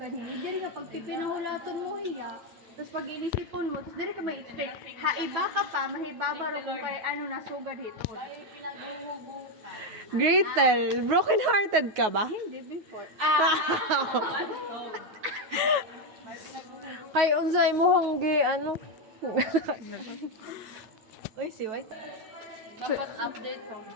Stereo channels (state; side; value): late; left; 9.4 ms